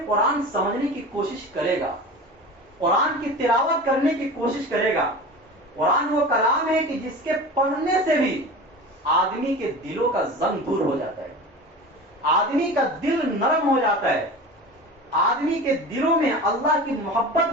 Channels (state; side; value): normal; both; correlation 0.33